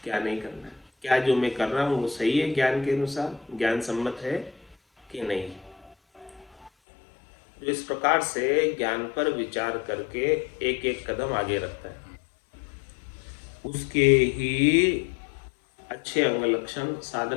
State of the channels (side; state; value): right; drops out; at 6.7 s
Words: क्या नहीं करना है, क्या जो मैं कर रहा हूँ वो सही है, ज्ञान के अनुसार ज्ञान सम्मत है कि नहीं। जो इस प्रकार से ज्ञान पर विचार करके एक एक कदम आगे रखता है, उसके ही अच्छे अंग लक्षण,